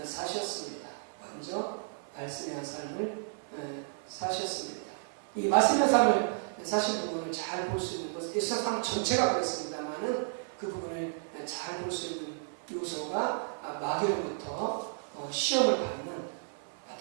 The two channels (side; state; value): left; silent; 56 dB below the other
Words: 사셨습니다. 먼저 말씀에 관한 삶을 사셨습니다. 이 말씀에 관한 삶을 사신 부분을 잘 볼 수 있는 것, 예수님 삶 전체가 그렇습니다만은 그 부분을 잘 볼 수 있는 요소가 마귀로부터 시험을 받는